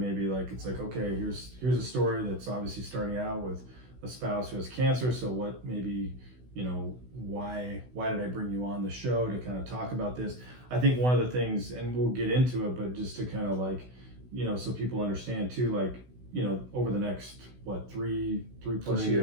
like it's like, okay, here's a story that's obviously starting out with a spouse who has cancer. So what maybe, you know, why did I bring you on the show to kind of talk about this? I think one of the things, and we'll get into it, but just to kind of like, you know, so people understand too, like, you know, over the next, what, three plus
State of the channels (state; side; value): late; left; 16 ms